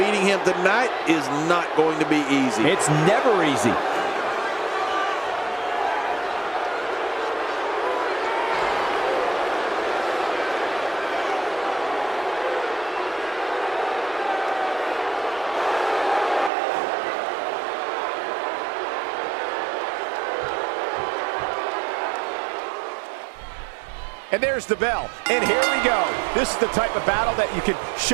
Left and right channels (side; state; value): left; drops out; at 16.5 s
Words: him tonight is not going to be easy. It's never easy. And there's the bell. And here we go. This is the type of battle that you can